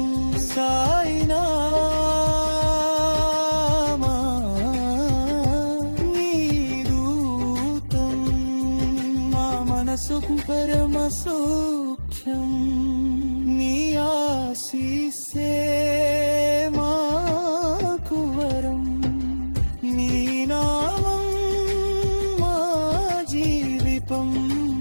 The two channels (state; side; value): inverted; both; correlation -1.00